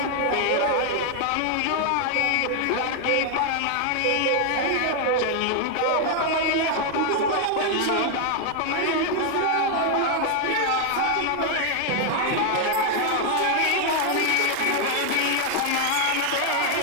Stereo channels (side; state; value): both; different; correlation 0.00